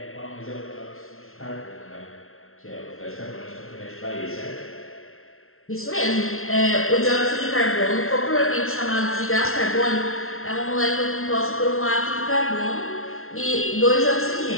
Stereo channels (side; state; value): right; late; 0.62 ms